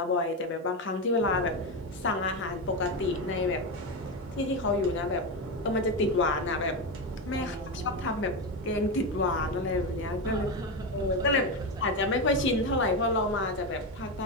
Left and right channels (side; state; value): both; normal; correlation 0.14